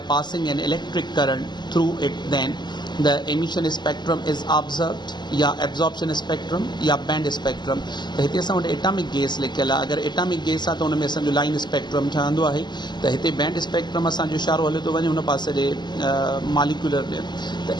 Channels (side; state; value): right; late; 0.21 ms